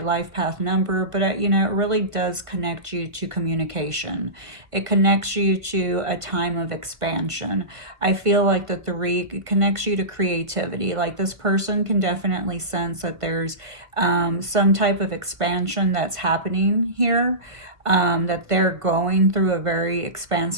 life path number, but you know, it really does connect you to communication. It connects you to a time of expansion. I feel like the 3 connects you to creativity. Like this person can definitely sense that there's some type of expansion that's happening here. That they're going through a very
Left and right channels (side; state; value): left; late; 1.5 ms